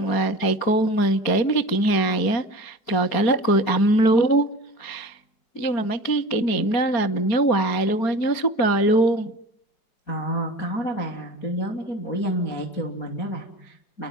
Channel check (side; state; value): right; late; 4.3 ms